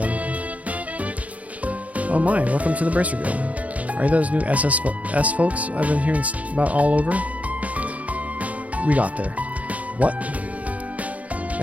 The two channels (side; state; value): left; late; 0.069 ms